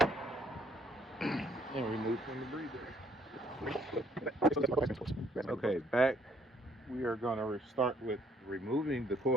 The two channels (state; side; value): normal; both; correlation 0.65